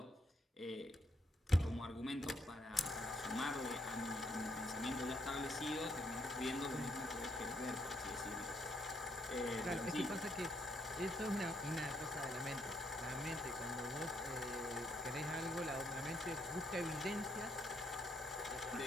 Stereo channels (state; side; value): normal; both; correlation 0.74